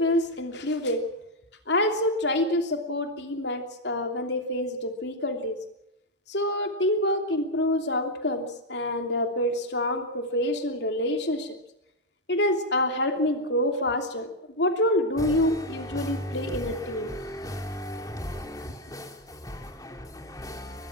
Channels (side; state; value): both; normal; correlation 0.02